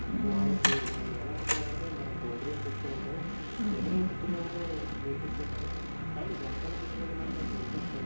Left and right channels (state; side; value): inverted; both; correlation -1.00